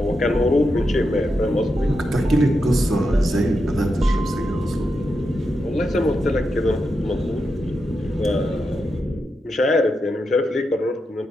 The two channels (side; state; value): both; normal; correlation 0.86